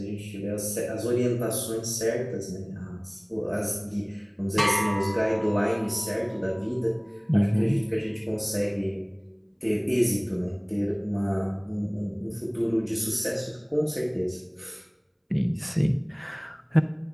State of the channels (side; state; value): both; identical; correlation 1.00